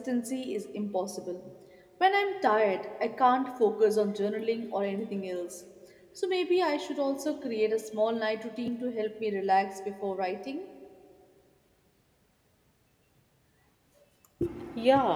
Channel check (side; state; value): both; identical; correlation 1.00